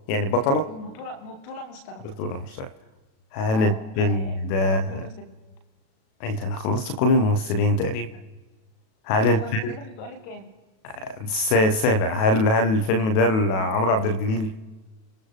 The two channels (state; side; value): late; right; 37 ms